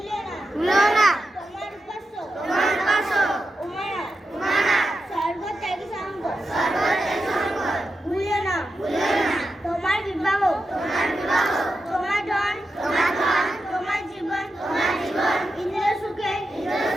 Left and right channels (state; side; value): normal; both; correlation 0.89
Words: না তোমার উপাস্য উমানাথ সর্বত্যাগী সাঙ্গ ভুলিও না তোমার বিবাহ তোমার ধন তোমার জীবন ইন্দ্রিয় সুখে